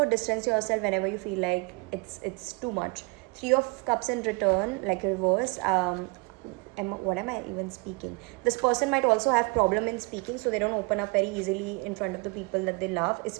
distance yourself whenever you feel like it's too much. 3 of cups in return, like reverse. What am I even speaking? This person might also have problem in speaking, so they don't open up very easily in front of the people that they love,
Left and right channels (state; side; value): quieter; left; 30.4 dB